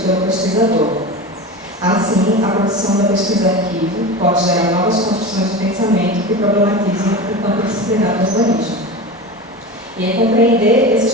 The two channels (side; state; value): both; normal; correlation 0.28